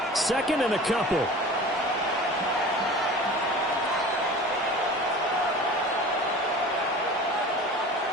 Second and a couple.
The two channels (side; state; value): both; normal; correlation 0.39